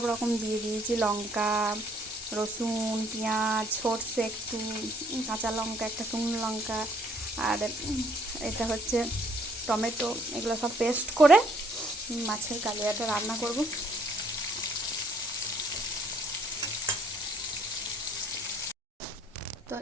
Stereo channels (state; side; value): normal; both; correlation 0.64